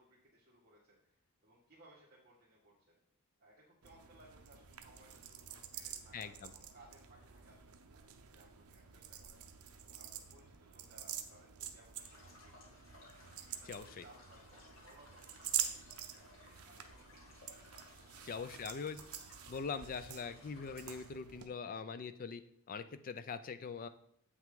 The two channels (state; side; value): normal; both; correlation 0.04